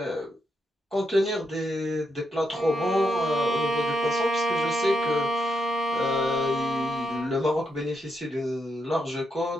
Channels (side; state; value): both; normal; correlation 0.82